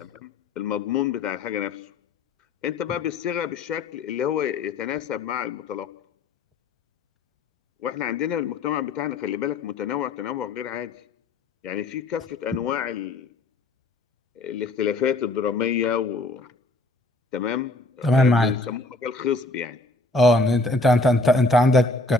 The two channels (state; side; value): quieter; right; 3.1 dB